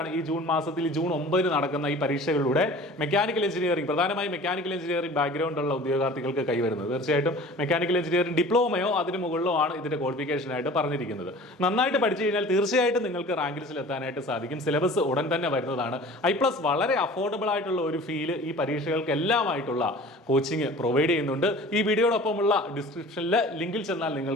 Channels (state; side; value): normal; both; correlation 0.43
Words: ഈ ജൂൺ മാസത്തിൽ, ജൂൺ 9 നടക്കുന്ന ഈ പരീക്ഷകളിലൂടെ മെക്കാനിക്കൽ എഞ്ചിനീയറിംഗ്, പ്രധാനമായും മെക്കാനിക്കൽ എഞ്ചിനീയറിംഗ് ബാക്ക്ഗ്രൗണ്ട് ഉള്ള ഉദ്യോഗാർത്ഥികൾക്ക് കൈവരുന്നത്. തീർച്ചയായിട്ടും മെക്കാനിക്കൽ എഞ്ചിനീയറിംഗ് ഡിപ്ലോമയോ അതിന് മുകളിലോ ആണ് ഇതിന്റെ ക്വാളിഫിക്കേഷൻ ആയിട്ട് പറഞ്ഞിരിക്കുന്നത്. നന്നായിട്ട് പഠിച്ചു കഴിഞ്ഞാൽ തീർച്ചയായിട്ടും നിങ്ങൾക്ക് റാങ്ക് ലിസ്റ്റിൽ എത്താനായിട്ട് സാധിക്കും. സിലബസ് ഉടൻ തന്നെ വരുന്നതാണ്. iPlus വളരെ അഫോർഡബിൾ ആയിട്ടുള്ള ഒരു ഫീല് ഈ പരീക്ഷകൾക്ക് എല്ലാമായിട്ടുള്ള കോച്ചിങ് പ്രൊവൈഡ് ചെയ്യുന്നുണ്ട്. ഈ വീഡിയോടൊപ്പമുള്ള ഡിസ്ക്രിപ്ഷനിൽ ലിങ്കിൽ ചെന്നാൽ